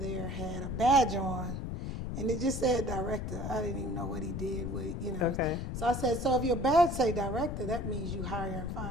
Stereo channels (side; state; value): left; noise; rumble, 4 dB below the sound